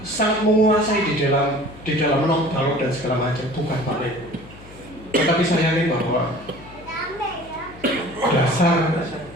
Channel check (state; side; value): noise; left; hum, 19 dB below the sound